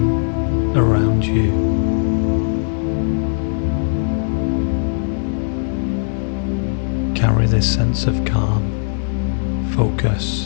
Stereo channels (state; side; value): silent; right; digital silence